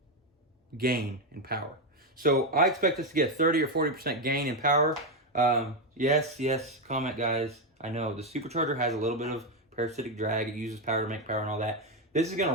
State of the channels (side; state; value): both; normal; correlation 0.07